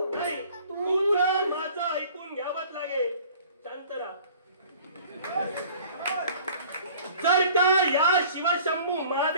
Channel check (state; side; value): inverted; both; correlation -0.50